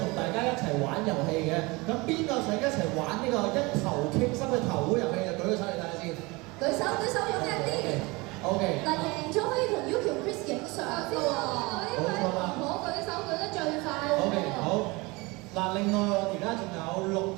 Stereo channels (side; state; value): left; quieter; 24.6 dB